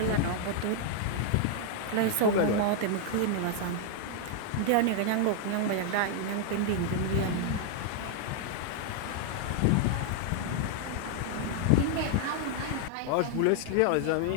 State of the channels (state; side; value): different; both; correlation 0.00